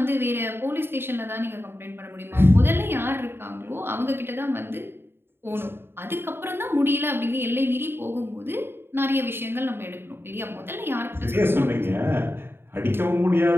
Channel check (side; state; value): left; late; 0.11 ms